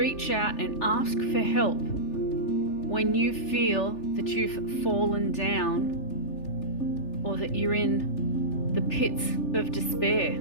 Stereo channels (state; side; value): late; right; 3.4 ms